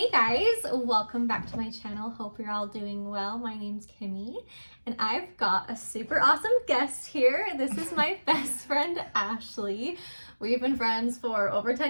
guys, welcome back to my channel. Hope you're all doing well. My name's Kimmy and I've got a super awesome guest here. This is my best friend Ashley. We've been friends for over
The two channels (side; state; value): both; inverted; correlation -1.00